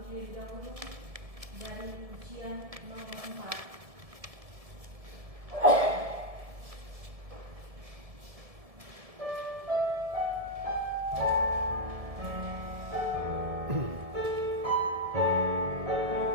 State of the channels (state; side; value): late; left; 1.7 ms